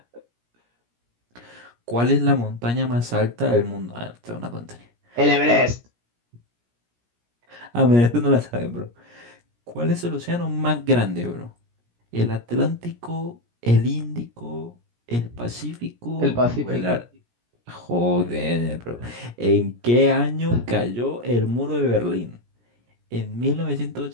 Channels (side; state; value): left; late; 17 ms